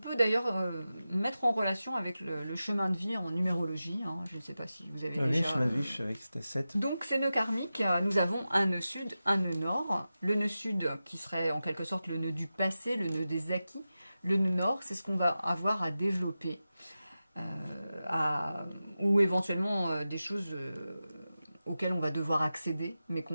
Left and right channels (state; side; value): inverted; both; correlation -0.93